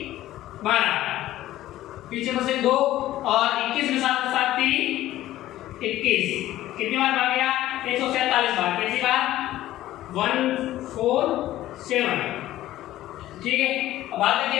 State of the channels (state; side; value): quieter; right; 14.5 dB